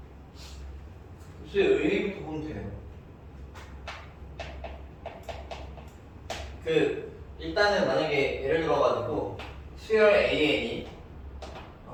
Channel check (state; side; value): identical; both; correlation 1.00